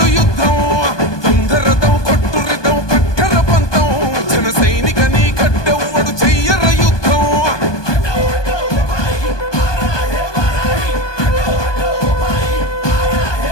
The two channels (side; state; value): right; late; 1.2 ms